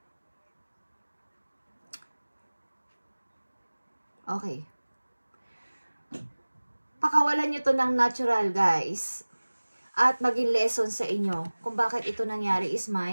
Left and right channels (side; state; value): both; inverted; correlation -1.00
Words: Okay. Pakawalan nyo to ng natural, guys. At maging lesson sa inyo kung bakit ito nangyari is